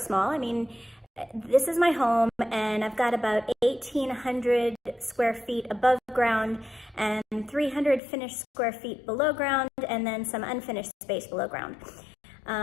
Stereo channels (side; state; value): right; drops out; at 8.0 s